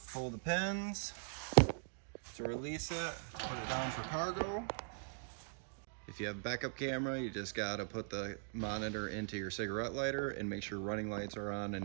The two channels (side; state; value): left; silent; digital silence